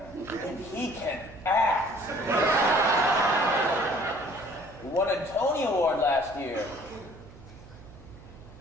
And he can act. He won a Tony Award last year.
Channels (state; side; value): noise; right; hum, 19 dB below the sound